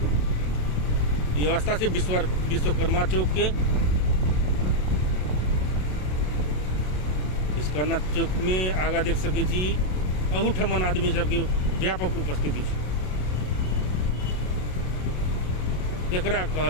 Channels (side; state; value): right; late; 27 ms